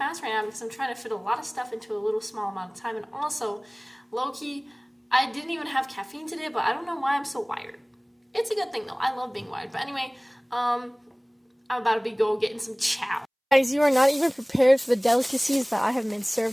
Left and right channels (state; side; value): identical; both; correlation 1.00